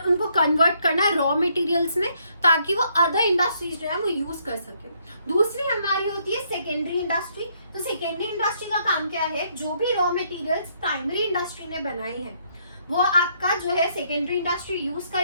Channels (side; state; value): both; inverted; correlation -0.70